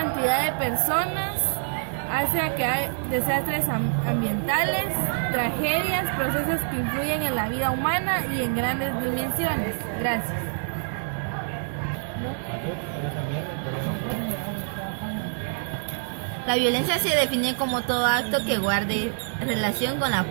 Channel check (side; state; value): left; silent; digital silence